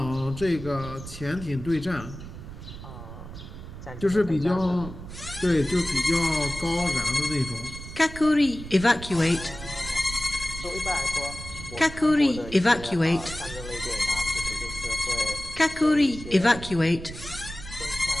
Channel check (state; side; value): noise; right; rumble, 12 dB below the sound